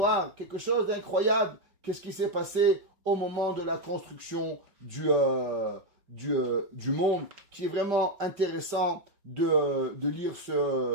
quelque chose d'incroyable. Qu'est-ce qui s'est passé au moment de la construction du monde, qui est vraiment intéressant de lire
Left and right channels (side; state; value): left; late; 5.2 ms